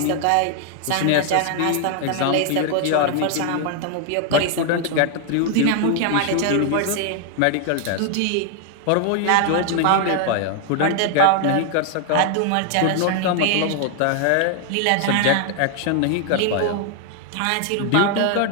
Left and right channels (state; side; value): different; both; correlation 0.00